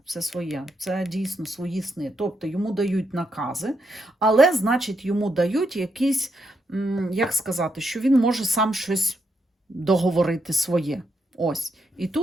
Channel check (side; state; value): both; normal; correlation 0.80